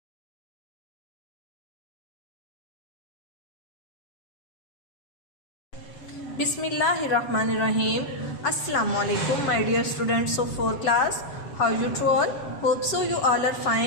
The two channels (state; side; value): late; right; 7.3 ms